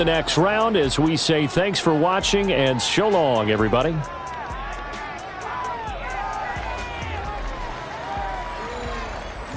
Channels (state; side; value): identical; both; correlation 1.00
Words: next round as we say thanks for watching and so long, everybody.